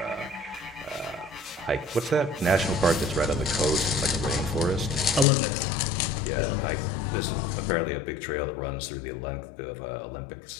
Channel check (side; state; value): right; drops out; at 5.2 s